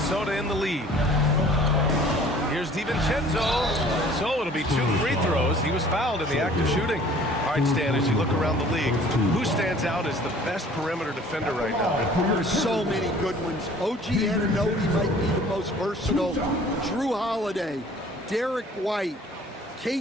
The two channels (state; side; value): normal; both; correlation 0.51